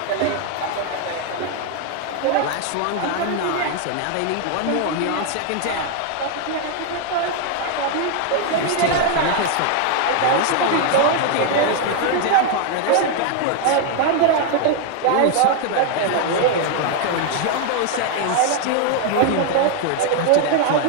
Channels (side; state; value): both; different; correlation 0.00